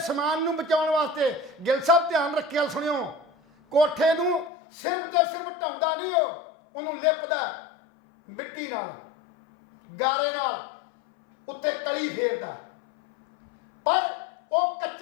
ਸਮਾਨ ਨੂੰ ਬਚਾਉਣ ਵਾਸਤੇ, ਗਿੱਲ ਸਾਹਿਬ ਧਿਆਨ ਰੱਖਿਆ ਸੁਣਿਓ, ਕੋਠੇ ਨੂੰ ਸਿਰਫ ਤੇ ਸਿਰਫ ਢਾਉਂਦਾ ਨਹੀਂ, ਉਹਨੂੰ ਲਿਪਦਾ ਮਿੱਟੀ ਨਾਲ, ਗਾਰੇ ਨਾਲ, ਉੱਤੇ ਕਲੀ ਫੇਰਦਾ। ਪਰ ਉਹ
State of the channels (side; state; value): right; drops out; at 4.5 s